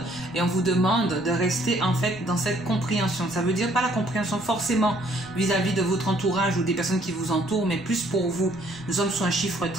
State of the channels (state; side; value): noise; right; rumble, 23 dB below the sound